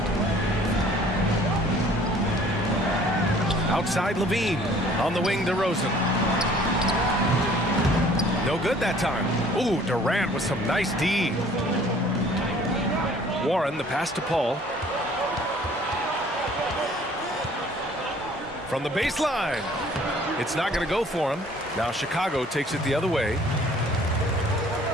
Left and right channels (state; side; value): normal; both; correlation 0.54